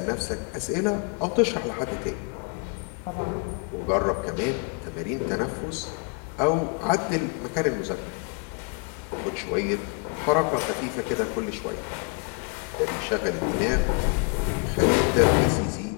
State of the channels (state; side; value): quieter; right; 38.4 dB